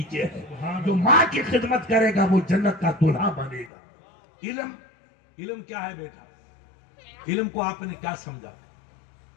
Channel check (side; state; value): right; drops out; at 3.7 s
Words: ہے۔ جو ماں کی خدمت کرے گا وہ جنت کا دلہا بنے گا۔ علم کیا ہے بیٹا؟ علم کو آپ نے کیا سمجھا؟